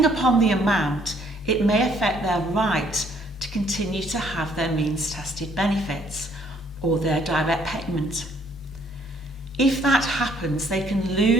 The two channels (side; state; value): both; normal; correlation 0.64